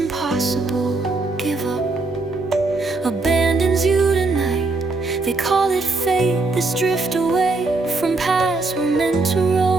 give up, abandons you tonight. They call it fate, this drift away from paths we're meant to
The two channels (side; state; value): left; quieter; 3.5 dB